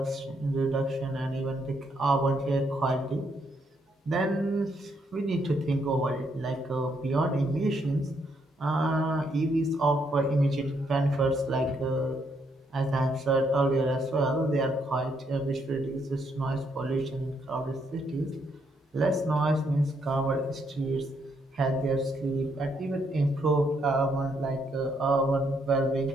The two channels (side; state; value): both; normal; correlation 0.74